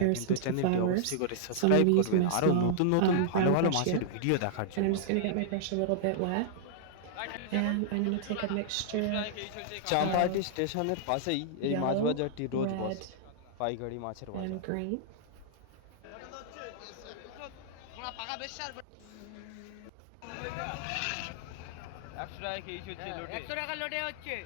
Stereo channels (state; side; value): different; both; correlation -0.01